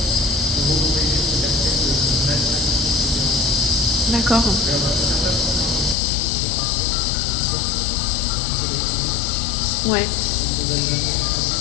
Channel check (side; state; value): right; drops out; at 6.0 s